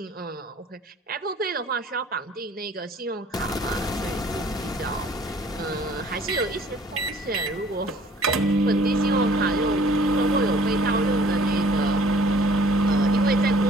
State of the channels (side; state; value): both; normal; correlation 0.55